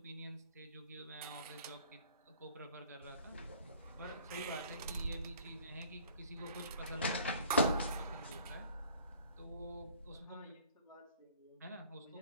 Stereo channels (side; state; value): both; inverted; correlation -0.53